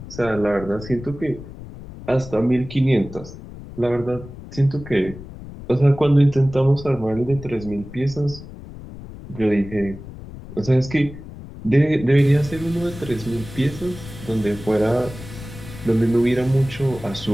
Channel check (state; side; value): noise; left; rumble, 14 dB below the sound